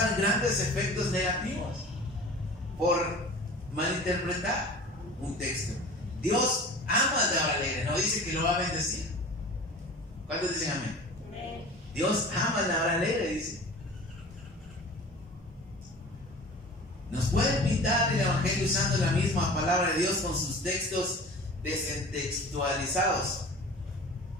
grandes efectos negativos por malinterpretar un texto. Dios ama al dador alegre, no dice que lo va a bendecir. ¿Cuántos dicen amén? Amén. Dios ama al dador alegre, dice. Nos pueden pintar el evangelio usando la misma palabra de Dios con sus textos descontextualizados.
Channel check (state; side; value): normal; both; correlation 0.40